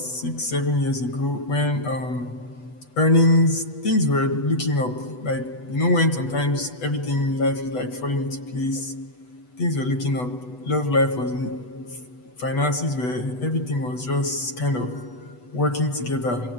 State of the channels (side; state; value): right; late; 8.1 ms